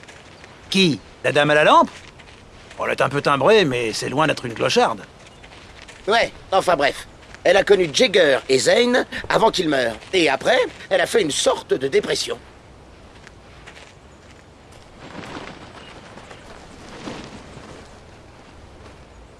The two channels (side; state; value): both; identical; correlation 1.00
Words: Qui? La dame à la lampe? Elle est un peu timbrée, mais c'est loin d'être une clocharde. Ouais, enfin bref. Elle a connu Jagger et Zane avant qu'ils meurent. Et après, elle a fait une sorte de dépression.